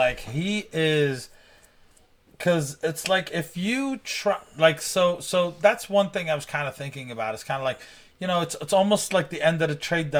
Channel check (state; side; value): identical; both; correlation 1.00